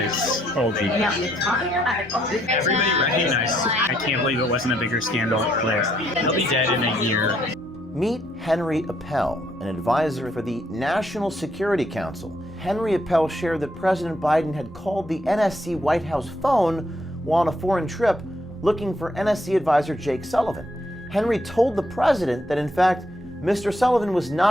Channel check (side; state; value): both; normal; correlation 0.72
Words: old age. Everybody recognized. I can't believe it wasn't a bigger scandal. He'll be dead in a year. Meet Henry Appel, an advisor for the National Security Council. Henry Appel shared that President Biden had called the NSC White House phone while on a foreign trip looking for NSC advisor Jake Sullivan. Henry told the president that in fact, Mr. Sullivan was